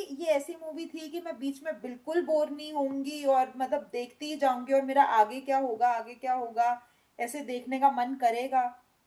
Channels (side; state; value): both; identical; correlation 1.00